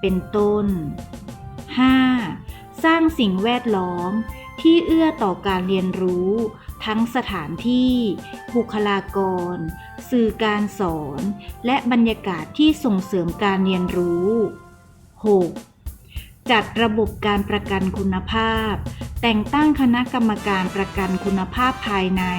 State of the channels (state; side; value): identical; both; correlation 1.00